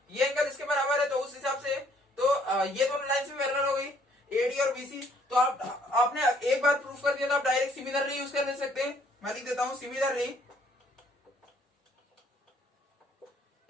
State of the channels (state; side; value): normal; both; correlation 0.64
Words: ये एंगल इसके बराबर है, तो उस हिसाब से तो ये दोनों लाइंस भी पैरेलल हो गई AD और BC। तो आपने एक बार प्रूफ कर दिया तो आप डायरेक्ट सिमिलरली यूज कर ले सकते हैं। मैं लिख देता हूं similarly